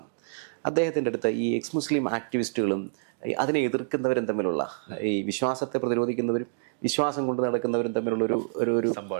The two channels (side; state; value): left; silent; digital silence